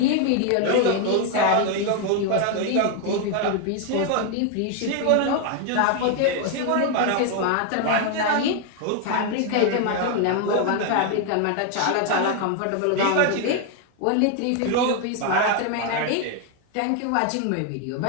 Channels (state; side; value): different; both; correlation 0.01